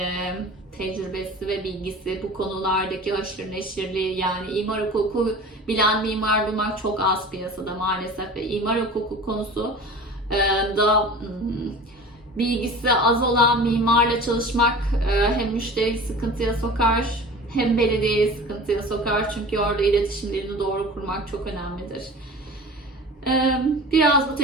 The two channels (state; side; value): normal; both; correlation 0.38